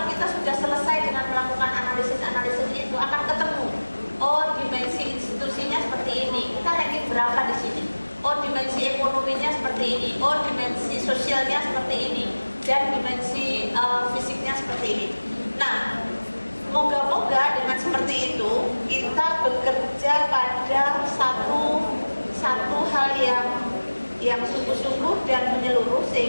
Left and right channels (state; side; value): inverted; both; correlation -1.00